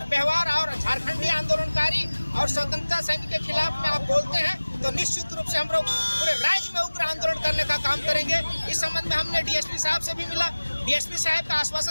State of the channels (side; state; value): both; inverted; correlation -1.00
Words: व्यवहार और झारखंडी आंदोलनकारी और स्वतंत्रता सैनिक के खिलाफ में आप बोलते हैं तो निश्चित रूप से हम लोग पूरे राज्य में उग्र आंदोलन करने का काम करेंगे। इस संबंध में हमने डीएसपी साहब से भी मिला। डीएसपी साहब का